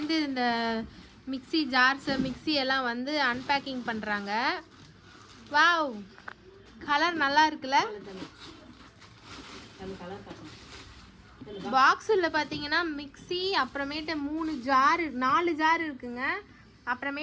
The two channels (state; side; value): identical; both; correlation 1.00